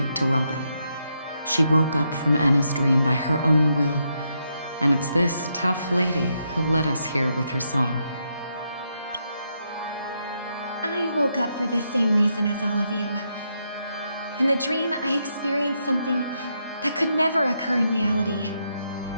to Robin. She woke up from Anna's dream by her own will, and it's this tough lady who led us here with her song. I woke up for the same reason as all of you. In the dream, I experienced something that could never occur in reality.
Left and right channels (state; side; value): inverted; both; correlation -0.80